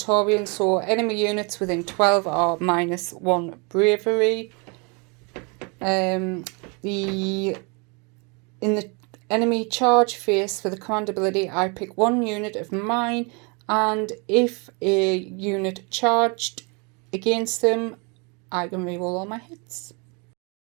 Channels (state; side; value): quieter; left; 32.0 dB